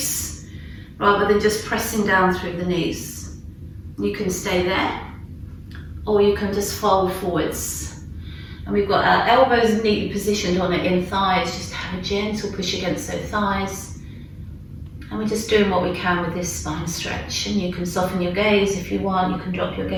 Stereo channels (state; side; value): identical; both; correlation 1.00